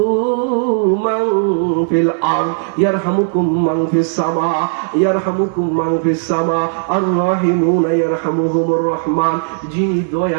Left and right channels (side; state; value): left; silent; digital silence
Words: মান ফিল আরদ ইয়ারহামুকুম মান ফিস সামা ইয়ারহামুকুম মান ফিস সামা আর রাহিমুনা ইয়ারহামুহুমুর রহমান। যিনি